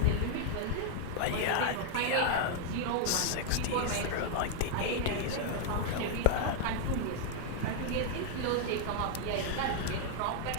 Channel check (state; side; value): different; both; correlation 0.00